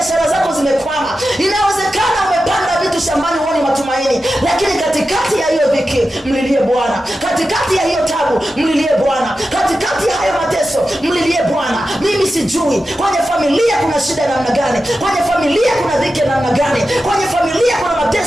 zako zimekwama, inawezekana umepanda vitu shambani huoni matumaini, lakini katikati ya hiyo dhiki mlilie Bwana, katikati ya hiyo taabu mlilie Bwana, katikati ya hayo mateso mlilie Bwana. Mimi sijui kwenye familia kuna shida namna gani, kwenye familia kuna dhiki namna gani, kwenye familia kuna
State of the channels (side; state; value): both; normal; correlation 0.92